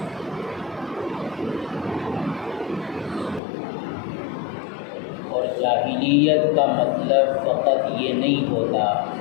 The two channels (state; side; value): drops out; right; at 3.4 s